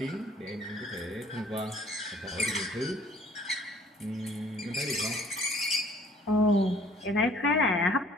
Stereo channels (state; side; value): normal; both; correlation 0.56